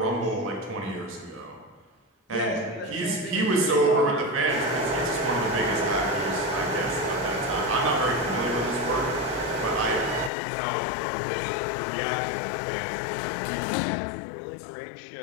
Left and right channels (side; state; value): right; drops out; at 10.3 s